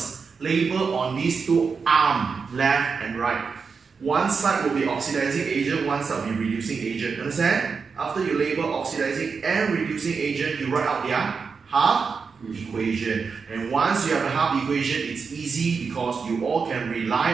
Label on these two arms, left and right. One side will be oxidizing agent, one side will be reducing agent. Understand? After you label oxidizing and reducing agent, you write out their half equation. And once you have a half equation, it's easy because you all can rely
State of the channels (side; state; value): left; quieter; 5.3 dB